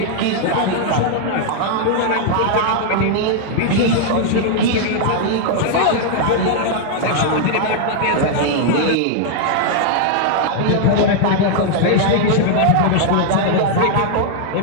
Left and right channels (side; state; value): both; different; correlation 0.00